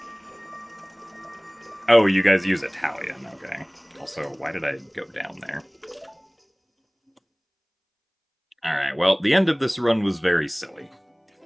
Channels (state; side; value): identical; both; correlation 1.00